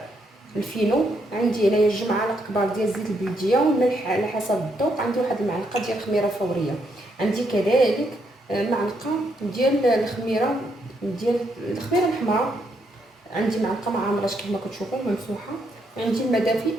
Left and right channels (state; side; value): normal; both; correlation 0.76